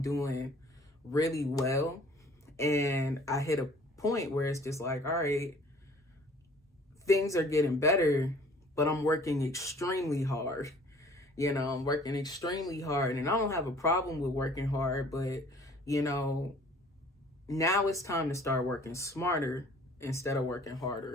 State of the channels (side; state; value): both; normal; correlation 0.53